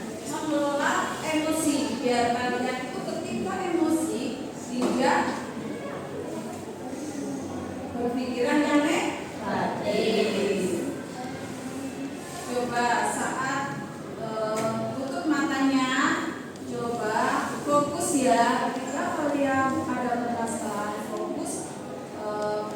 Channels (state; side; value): identical; both; correlation 1.00